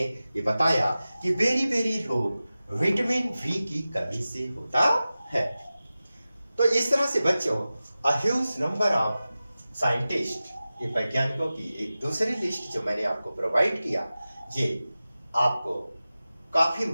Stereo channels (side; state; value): both; inverted; correlation -0.95